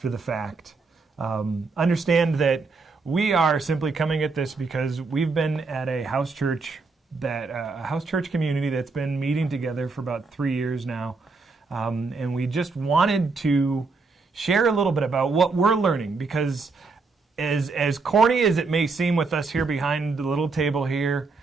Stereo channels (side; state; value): left; quieter; 4.1 dB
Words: the fact, understand that we are simply coming at this because we've been at a house church community that's been meeting together for about 3 years now, and we just wanted to share a little bit about what we're learning, because as corny as it may seem with us here behind the little table here